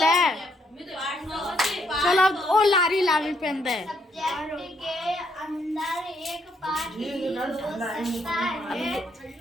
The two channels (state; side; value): normal; both; correlation 0.73